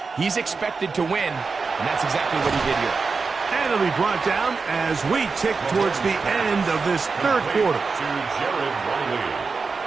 he's expected to win, and that's exactly what he did here. And it'll be brought down as we tick towards the end of this third quarter.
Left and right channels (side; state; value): left; quieter; 4.6 dB